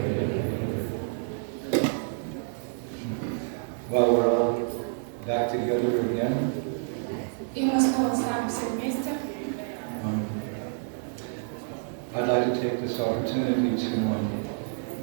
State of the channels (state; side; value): silent; left; 59 dB below the other